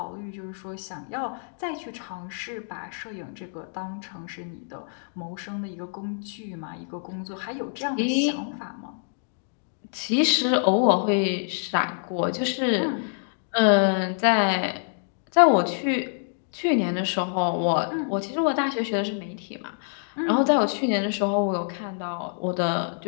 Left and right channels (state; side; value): silent; right; digital silence